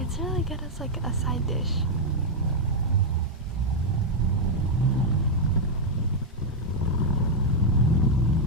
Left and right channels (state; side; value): normal; both; correlation -0.01